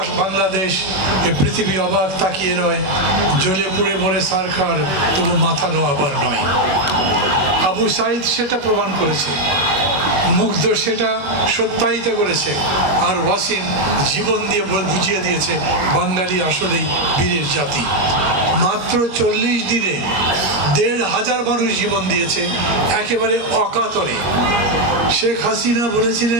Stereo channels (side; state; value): left; late; 21 ms